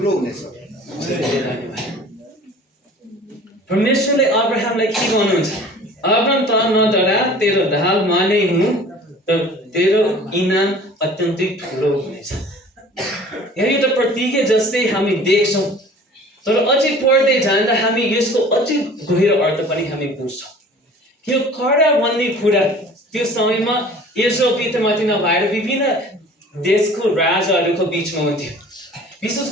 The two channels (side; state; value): both; normal; correlation 0.46